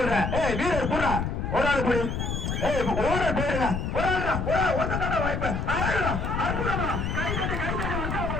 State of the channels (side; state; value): left; noise; rumble, 2 dB below the sound